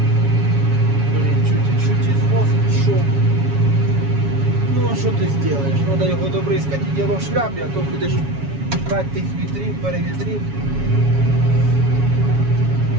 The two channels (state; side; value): late; left; 7.2 ms